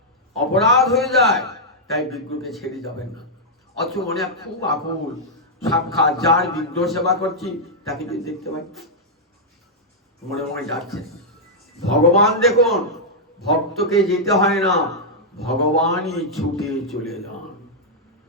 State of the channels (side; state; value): both; normal; correlation -0.07